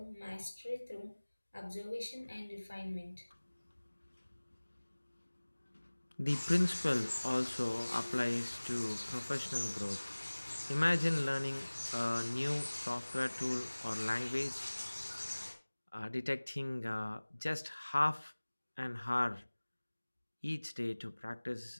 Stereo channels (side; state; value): both; inverted; correlation -1.00